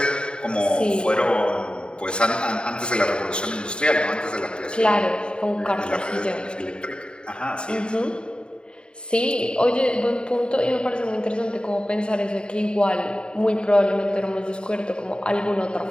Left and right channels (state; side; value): late; right; 0.051 ms